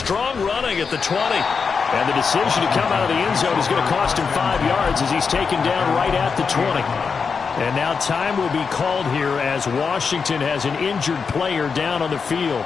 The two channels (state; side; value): quieter; right; 5.5 dB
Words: running at the 20. And the decision to come out of the end zone is going to cost him 5 yards as he's taken down right at the 20. And now time will be called here as Washington has an injured player down on the field.